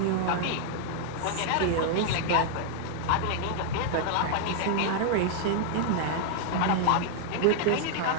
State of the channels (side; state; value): both; different; correlation -0.01